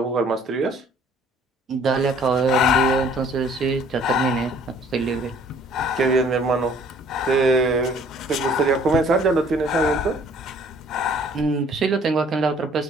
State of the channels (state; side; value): normal; both; correlation 0.57